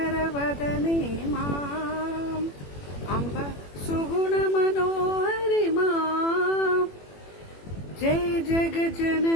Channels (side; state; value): right; late; 21 ms